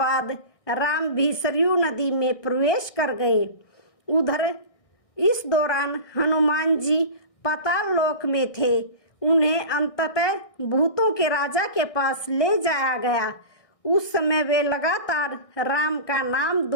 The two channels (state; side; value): late; right; 1.6 ms